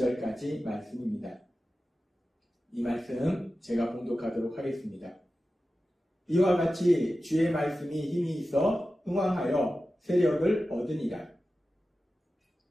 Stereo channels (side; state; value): both; normal; correlation 0.94